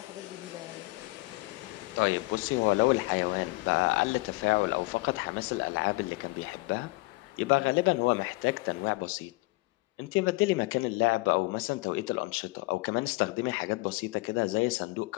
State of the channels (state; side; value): quieter; right; 23.3 dB